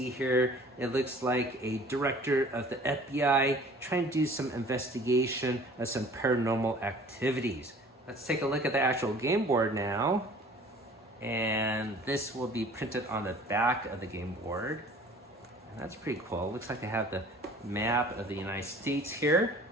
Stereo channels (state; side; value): normal; both; correlation 0.49